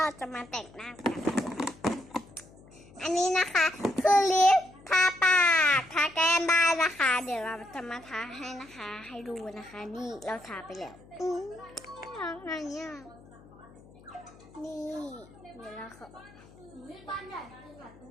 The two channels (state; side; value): noise; left; hum, 23 dB below the sound